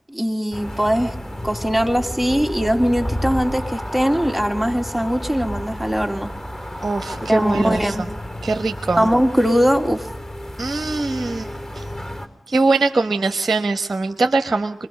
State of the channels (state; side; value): normal; both; correlation 0.96